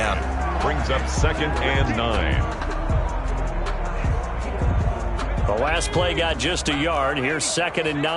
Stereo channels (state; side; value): identical; both; correlation 1.00